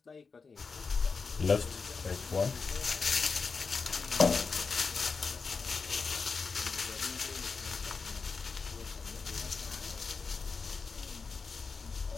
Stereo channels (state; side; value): quieter; right; 4.8 dB